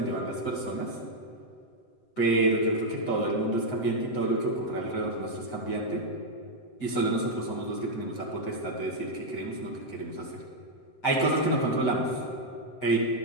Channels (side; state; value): right; late; 7.9 ms